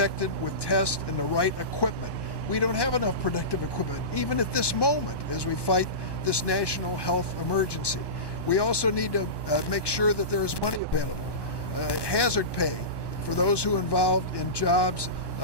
with tests and the right equipment. We don't have enough protective equipment, even at this moment, as we fight this national health emergency. We also need to make sure that there is money available, hazard pay for those who are involved in jobs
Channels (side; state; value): right; late; 1.2 ms